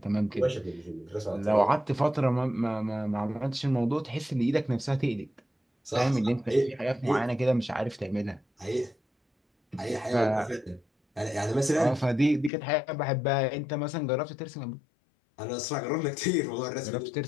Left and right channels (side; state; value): right; drops out; at 12.5 s